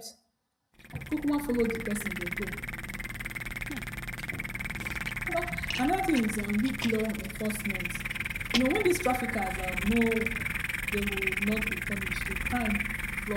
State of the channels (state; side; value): identical; both; correlation 1.00